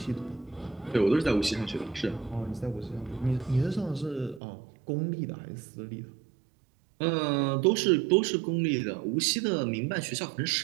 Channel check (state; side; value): drops out; left; at 4.4 s